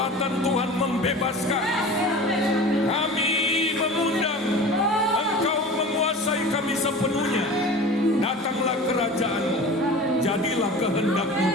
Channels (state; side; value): normal; both; correlation 0.37